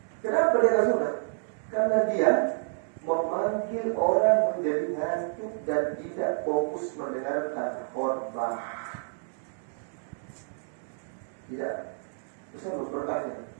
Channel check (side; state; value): left; silent; digital silence